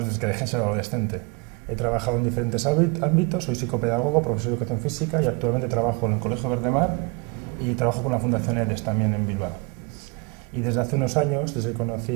desde que dejé de ser adolescente. He trabajado en diferentes ámbitos, soy psicopedagogo, profesor de educación física y actualmente trabajo en el Colegio Verdemar y trabajo con la Fundación EDES también en Bilbao. Y desde hace unos años, desde que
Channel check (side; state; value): left; quieter; 28.4 dB